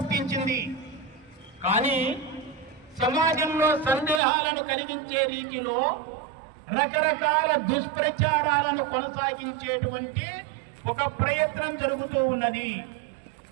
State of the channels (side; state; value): left; drops out; at 4.2 s